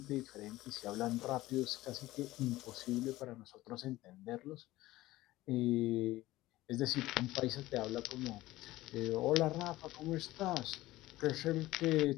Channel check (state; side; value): quieter; right; 17.2 dB